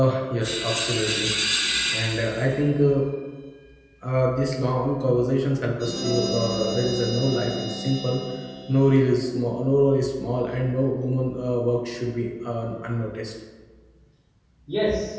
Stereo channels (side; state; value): both; identical; correlation 1.00